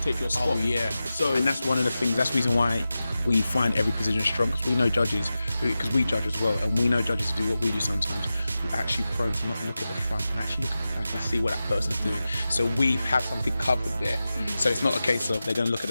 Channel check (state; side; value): inverted; both; correlation -0.93